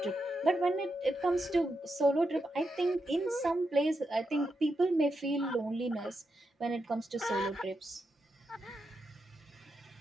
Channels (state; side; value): normal; both; correlation 0.85